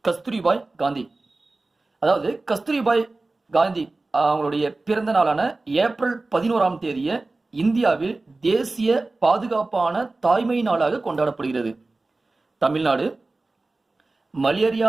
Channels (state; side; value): quieter; left; 3.3 dB